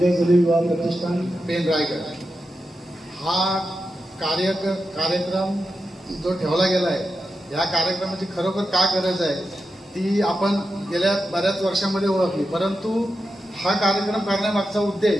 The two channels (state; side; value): normal; both; correlation 0.89